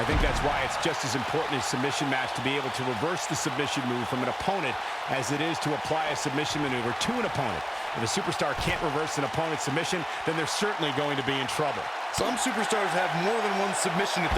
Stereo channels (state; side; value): identical; both; correlation 1.00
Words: think that's why it's just as important in a submission match to be able to reverse the submission move from an opponent as it is to apply a submission maneuver to an opponent. If a superstar can't reverse an opponent's submission, then they're certainly going to be in trouble. Some superstars have more than one submission at